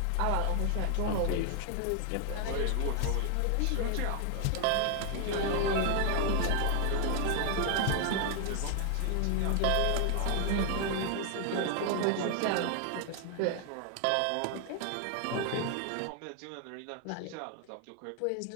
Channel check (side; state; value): both; different; correlation 0.00